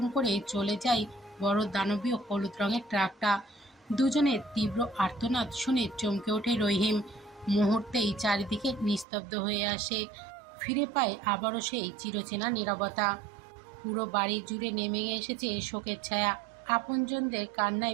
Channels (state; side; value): drops out; left; at 9.1 s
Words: করে চলে যায় বড় দানবীয় হলুদ রঙের ট্রাকটা। দুজনের তীব্র আর্তনাদ শুনে চমকে ওঠে রহিম। মুহূর্তেই চারিদিকে নিস্তব্ধ হয়ে আসে। ফিরে পায় আবারও সেই চিরচেনা নীরবতা। পুরো বাড়ি জুড়ে নেমে এসেছে শোকের ছায়া। আপনজনদের